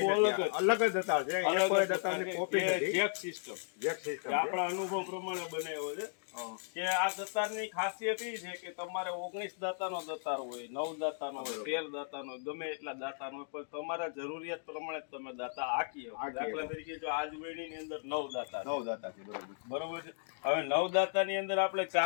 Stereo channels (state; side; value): silent; right; digital silence